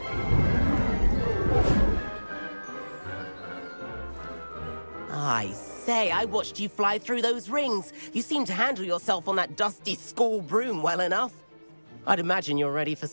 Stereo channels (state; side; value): inverted; both; correlation -1.00